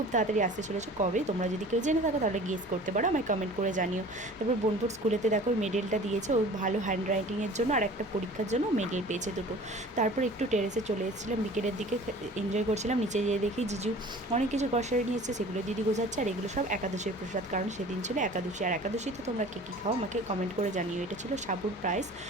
তাড়াতাড়ি আসতে চলেছে। কবে তোমরা যদি কেউ জেনে থাকো তাহলে গেস করতে পারো, আমায় কমেন্ট করে জানিও। তারপর বোনপুর স্কুলেতে দেখো ওই মেডেলটা দিয়েছে, ও ভালো হ্যান্ড রাইটিংয়ের জন্য আর একটা পরীক্ষার জন্য মেডেল পেয়েছে দুটো। তারপর একটু টেরেসে চলে এসেছিলাম, বিকেলের দিকে এনজয় করছিলাম। নিচে যেয়ে দেখি জিজু অনেক কিছু গ্রসারি নিয়ে এসেছে, সেগুলো দিদি গোছাচ্ছে। আর এগুলো সব একাদশীর প্রসাদ, কারণ সেদিন ছিল একাদশী। আর একাদশীতে তোমরা কে কী খাও আমাকে কমেন্ট করে জানিও। এটা ছিল সাবুর প্রাইস,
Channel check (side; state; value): both; normal; correlation 0.44